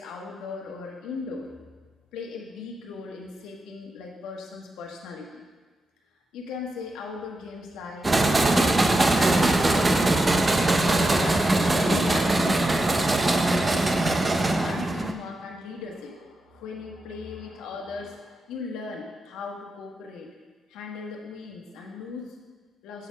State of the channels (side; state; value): both; normal; correlation 0.88